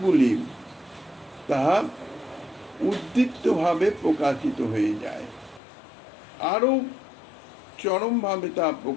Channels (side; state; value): right; drops out; at 5.6 s